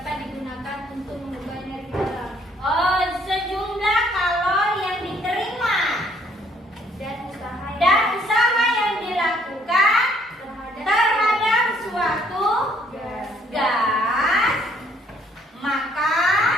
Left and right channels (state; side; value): normal; both; correlation 0.65